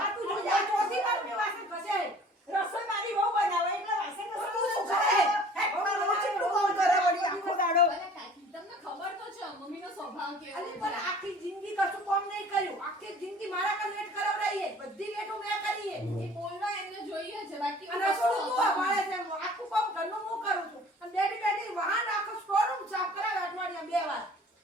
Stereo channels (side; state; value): both; normal; correlation 0.49